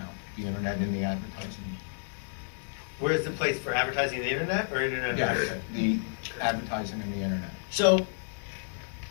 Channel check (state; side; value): silent; right; digital silence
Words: the internet in the advertising? Where is the place for advertising on the internet or internet Yes, advertising? the advertising in the internet. So